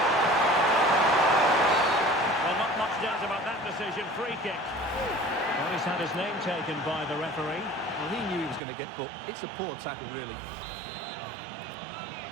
Well, not much doubt about that decision. Free kick. Well, he's had his name taken by the referee. Well, he knew he was going to get booked. It's a poor tackle, really.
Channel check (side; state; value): left; drops out; at 8.6 s